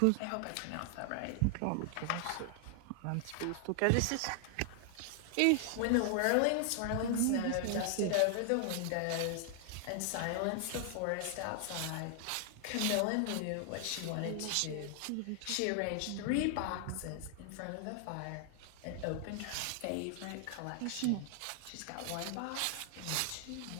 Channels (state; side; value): different; both; correlation 0.00